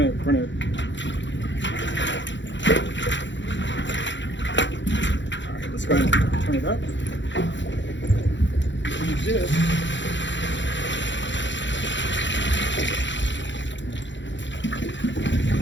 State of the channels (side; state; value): right; late; 0.54 ms